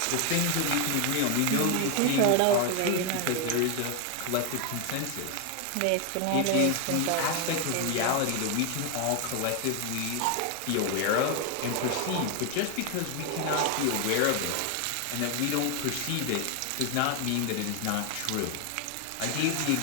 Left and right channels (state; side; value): different; both; correlation 0.01